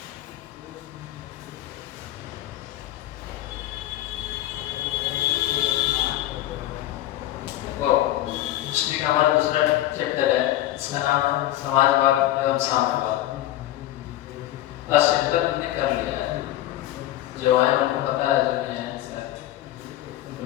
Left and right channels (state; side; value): quieter; right; 14.5 dB